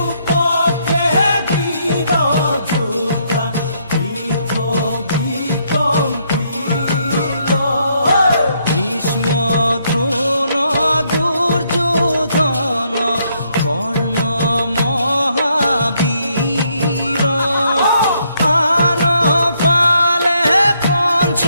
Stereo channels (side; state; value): both; inverted; correlation -0.73